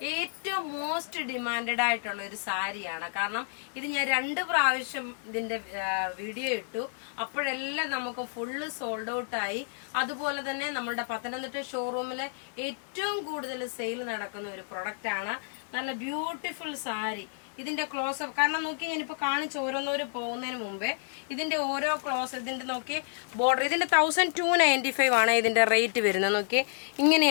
ഏറ്റവും മോസ്റ്റ് ഡിമാൻഡഡ് ആയിട്ടുള്ള ഒരു സാരിയാണ്. കാരണം ഇത് ഞാൻ 2 പ്രാവശ്യം ഇതിന്റെ വീഡിയോ ഇട്ടു. അപ്പോഴെല്ലാം നമുക്ക് ഫുള്ള് സോൾഡ് ഔട്ട് ആയി. അതുപോലെ തന്നെ നമ്മുടെ പത്തനംതിട്ട ഷോറൂമിലെ ഏറ്റവും കൂടുതൽ സെയിൽ നടക്കുന്ന ഒരു പ്രൊഡക്റ്റ് ആണ്. നല്ല ബ്യൂട്ടിഫുൾ സാരി. ഇതിന്റെ ക്ലോസ് അപ്പ് കാരണം നോക്കി ഞാനിപ്പോ കാണിച്ച് ഓരോന്നോരും പോകുന്നതിന് മുമ്പേ ഇതിന്റെ ഓരോ ക്ലോസ് ഇതിന്റെ നോക്കി ബോർഡർ ഇതിന്റെ 1295 ആണ് ഇതിന്റെ റേറ്റ് വരുന്നത്. നോക്കി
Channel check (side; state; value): right; silent; digital silence